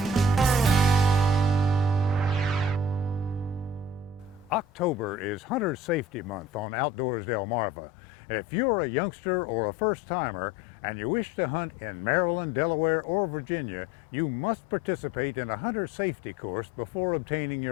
October is Hunter Safety Month on Outdoors Delmarva. If you're a youngster or a first-timer and you wish to hunt in Maryland, Delaware, or Virginia, you must participate in a hunter safety course before obtaining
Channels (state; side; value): drops out; right; at 6.7 s